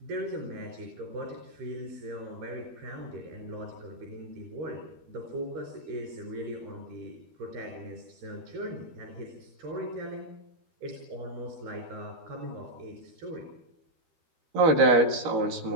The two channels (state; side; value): late; left; 12 ms